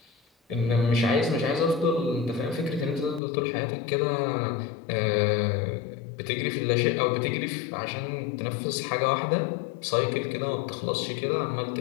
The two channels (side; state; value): right; drops out; at 3.2 s